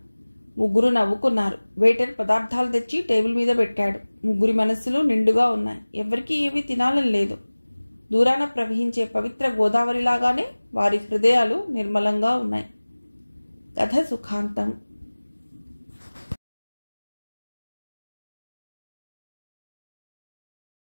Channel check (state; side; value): inverted; both; correlation -1.00